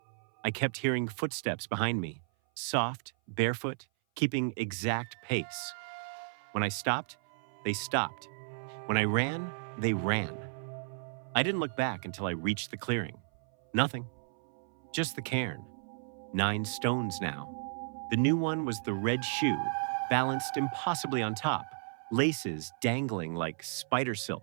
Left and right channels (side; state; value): left; silent; 55 dB below the other